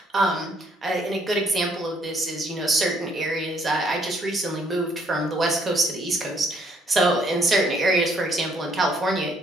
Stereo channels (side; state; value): both; normal; correlation 0.66